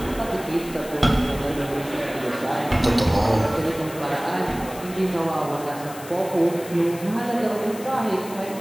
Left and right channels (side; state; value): left; noise; hiss, 16 dB below the sound